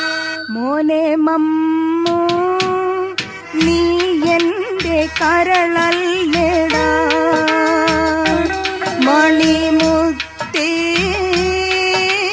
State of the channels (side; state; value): both; identical; correlation 1.00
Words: മോനെ മമ്മു, നീ എന്റെ കരളല്ലേടാ, മണിമുത്തേ